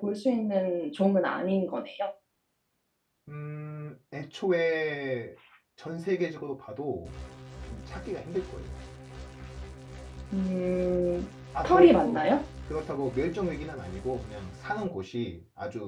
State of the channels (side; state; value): both; identical; correlation 1.00